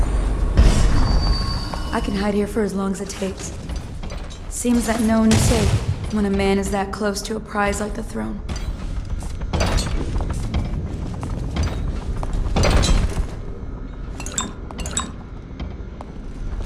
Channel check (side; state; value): both; identical; correlation 1.00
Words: I can hide here for as long as it takes. Seems that no one is safe when a man is that close to a prize like the throne.